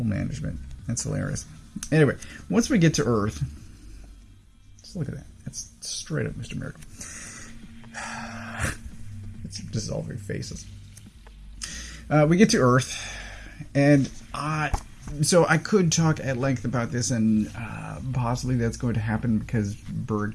management. That's hilarious. Anyway, once we get to Earth, just look at that. That's straight up Mr. Miracle. It's dissolving faces. We get to Earth, and so I could talk at length about this, and possibly that's going to happen because Berg,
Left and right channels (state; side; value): identical; both; correlation 1.00